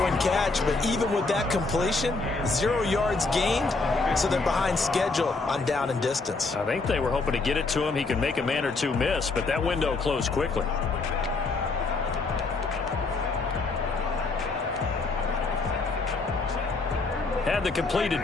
and catch, but even with that completion, 0 yards gained, so they're behind schedule on down and distance. I think they were hoping to get it to him. He can make a man or two miss, but that window closed quickly. Had the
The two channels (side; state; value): right; quieter; 3.8 dB